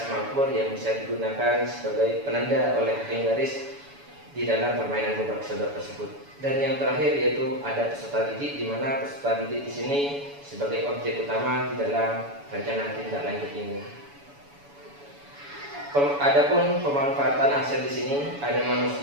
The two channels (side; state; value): left; late; 7.0 ms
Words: yang bisa digunakan sebagai penanda oleh hakim garis di dalam permainan gobak sodor tersebut. Dan yang terakhir yaitu ada peserta didik, di mana peserta didik di sini sebagai objek utama di dalam rencana tindak lanjut ini. Adapun pemanfaatan aset di sini ada